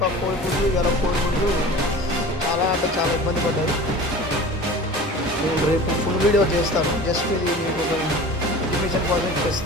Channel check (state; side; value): normal; both; correlation 0.38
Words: కోడి ముందు ఇవాళ కోడి ముందు చాలా అంటే చాలా ఇబ్బంది పడ్డాయి. నేను రేపు ఫుల్ వీడియో చేస్తాను. జస్ట్ ఇది మీకు ఒక ఇన్ఫర్మేషన్ కోసం